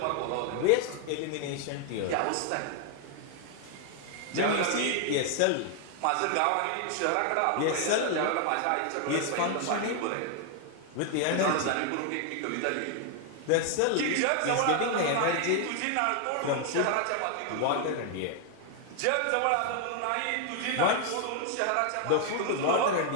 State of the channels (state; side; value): different; both; correlation 0.00